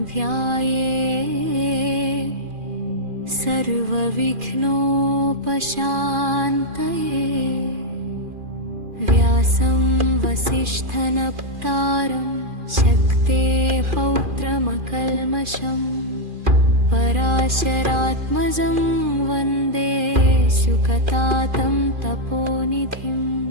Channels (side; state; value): left; late; 2.4 ms